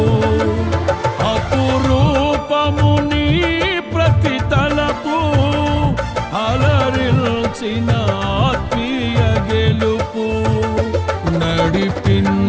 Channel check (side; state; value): both; identical; correlation 1.00